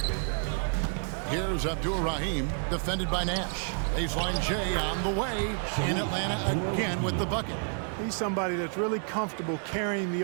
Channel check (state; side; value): silent; left; 58 dB below the other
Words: Here's Abdul-Rahim, defended by Nash. Baseline J on the way. In Atlanta again with the bucket. He's somebody that's really comfortable carrying the